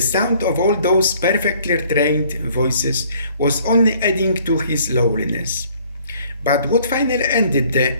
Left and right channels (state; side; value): inverted; both; correlation -0.59